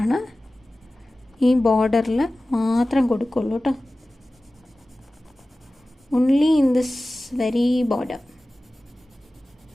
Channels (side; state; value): both; normal; correlation 0.96